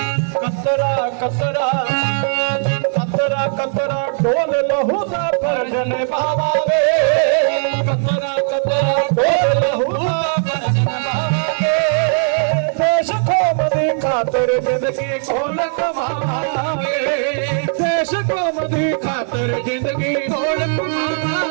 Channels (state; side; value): silent; left; 55 dB below the other